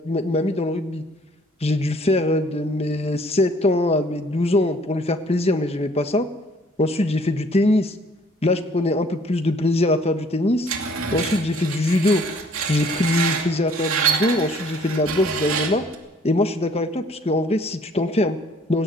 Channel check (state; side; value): normal; both; correlation 0.58